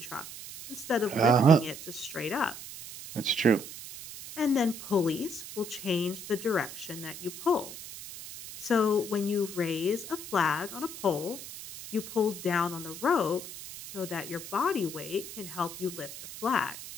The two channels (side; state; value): right; noise; hiss, 12 dB below the sound